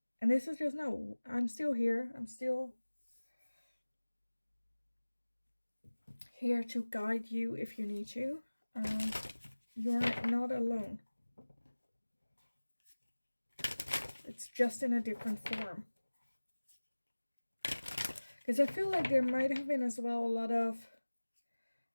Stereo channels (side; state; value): both; inverted; correlation -1.00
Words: this is just, no, I'm still here. I'm still here to guide you if you need to. Um, you're not alone. It's just in a different form. Because I feel like there might have been as well a lot of